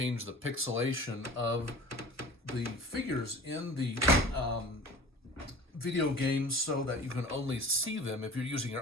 the pixelation of the figures in the video games so that you can only see them if you're using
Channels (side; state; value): both; normal; correlation 0.41